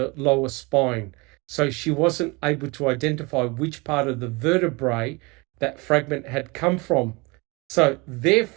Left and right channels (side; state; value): left; quieter; 26.3 dB